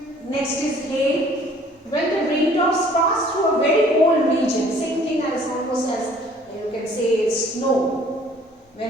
next is hail. When the raindrops pass through a very cold region, same thing as almost as you can say snow.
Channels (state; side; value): normal; both; correlation 0.56